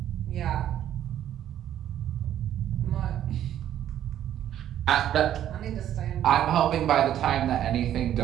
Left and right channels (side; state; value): left; quieter; 11.1 dB